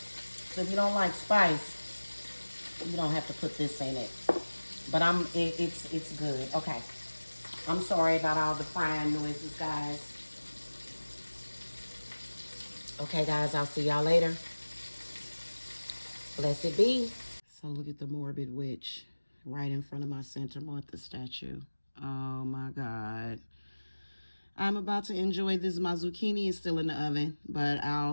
So if you don't like spice, you don't have to put this in it. But it's good. Okay. I'm sorry about all the frying noises, guys. Okay, guys, I'll see y'all later. Blessed be. So look at the morbid witch right in front of my Santa Martha statue. Oh my God. I'm about to enjoy this. My zucchini is still in the oven, but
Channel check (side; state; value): both; inverted; correlation -1.00